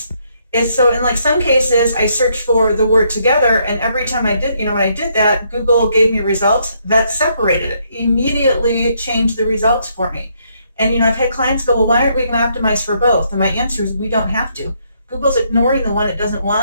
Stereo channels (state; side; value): inverted; both; correlation -0.73